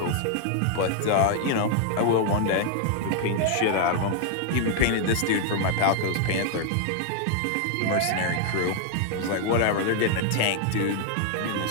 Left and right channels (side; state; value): both; different; correlation 0.00